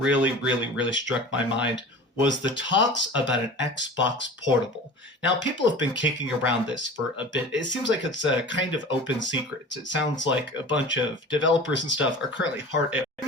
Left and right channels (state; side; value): normal; both; correlation 0.38